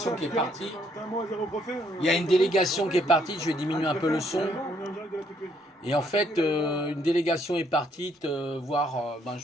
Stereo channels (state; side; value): normal; both; correlation 0.69